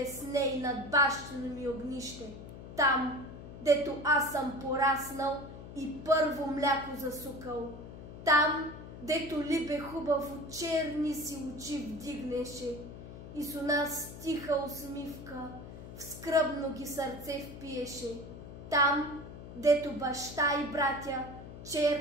ней над бащино ми огнище, там, дето аз съм пораснал и първо мляко засукал, там, дето либе хубаво черни си очи вдигнеше и с нас тиха усмивка в скръбно ги сърце впиеше, там, дето баща и братя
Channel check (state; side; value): noise; left; hum, 13 dB below the sound